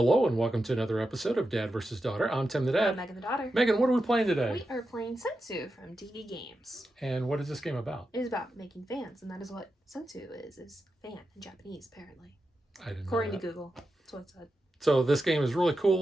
and welcome to another episode of Dad vs. Daughter. I'm Tim the Dad. I'm Megan the Daughter. Megan, what are we playing today? We are playing Sensu from DV Games. And what is this game about? It is about making fans, and that is what Sensu is fan in Japanese, apparently. I didn't know According that. to Google, that's what it said. So this game is really cool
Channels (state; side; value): normal; both; correlation 0.89